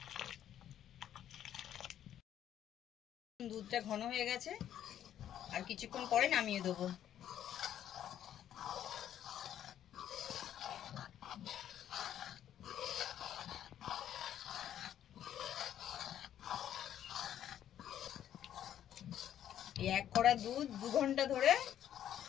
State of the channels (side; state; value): right; quieter; 10.7 dB